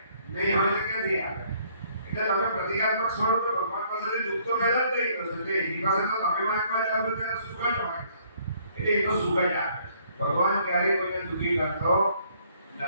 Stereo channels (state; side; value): inverted; both; correlation -0.63